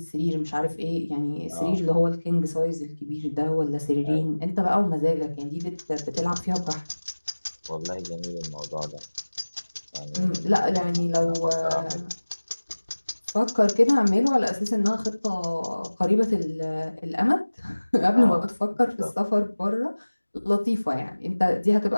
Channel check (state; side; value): inverted; both; correlation -1.00